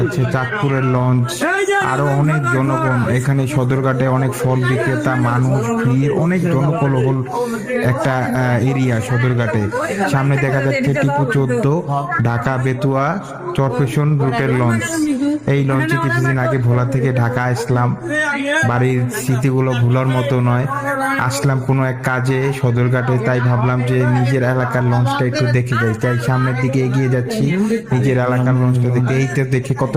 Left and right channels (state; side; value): identical; both; correlation 1.00